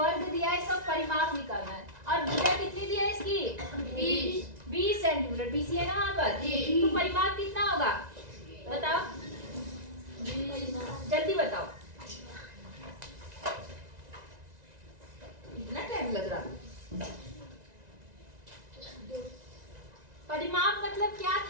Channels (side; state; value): left; late; 1.9 ms